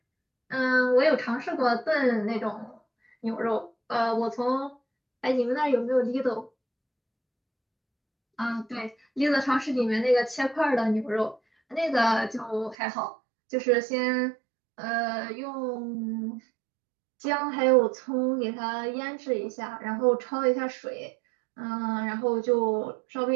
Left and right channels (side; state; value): left; drops out; at 12.8 s